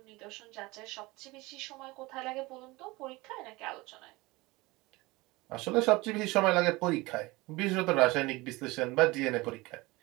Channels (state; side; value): quieter; left; 22.2 dB